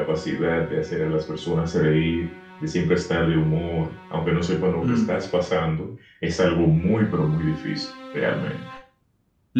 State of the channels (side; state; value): both; identical; correlation 1.00